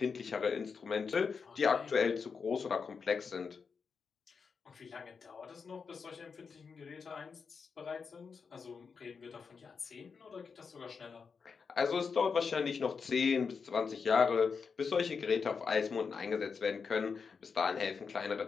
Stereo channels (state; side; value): quieter; right; 5.5 dB